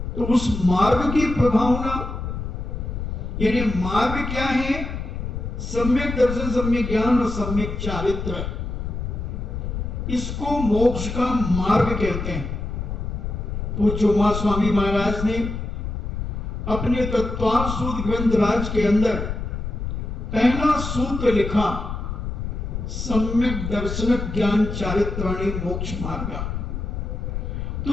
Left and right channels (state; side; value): noise; left; rumble, 4 dB below the sound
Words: तो उस मार्ग की प्रभावना, यानी मार्ग क्या है? सम्यक दर्शन, सम्यक ज्ञान और सम्यक चारित्र, इसको मोक्ष का मार्ग कहते हैं। पूज्य उमा स्वामी महाराज ने अपने तत्वार्थ सूत्र ग्रंथ राज के अंदर पहला सूत्र लिखा, सम्यक दर्शन ज्ञान चारित्राणि मोक्ष मार्ग।